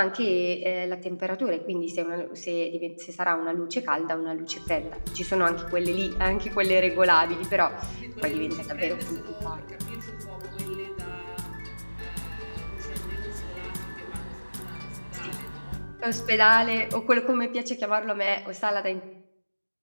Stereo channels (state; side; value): inverted; both; correlation -1.00